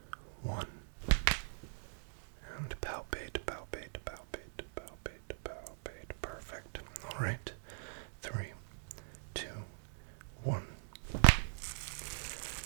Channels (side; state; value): left; silent; digital silence